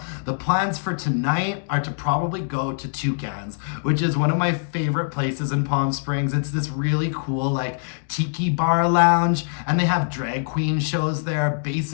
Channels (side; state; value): right; silent; digital silence